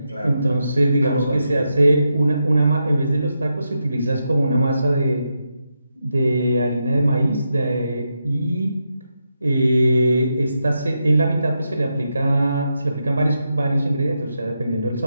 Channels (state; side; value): inverted; both; correlation -0.85